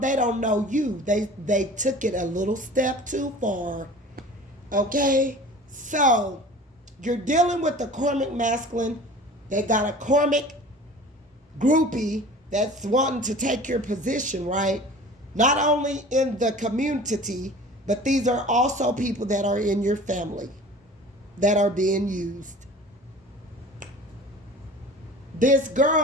They don't know you. They took it a little step too far. Okay? So, you're dealing with the karmic masculine. They got a karmic groupie that's wanting to take your position, right? Not only in the community, but these are also people that are in your family that are being used. This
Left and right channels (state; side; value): normal; both; correlation 0.42